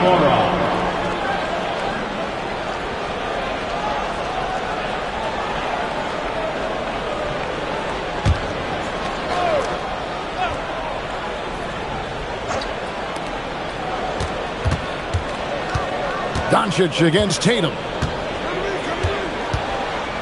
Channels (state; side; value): identical; both; correlation 1.00